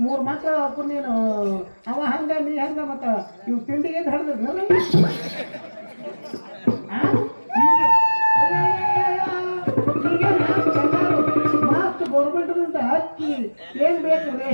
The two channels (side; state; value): both; inverted; correlation -1.00